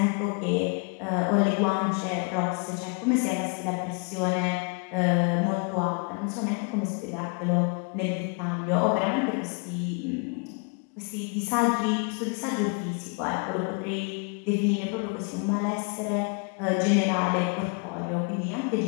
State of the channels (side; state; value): right; quieter; 35.2 dB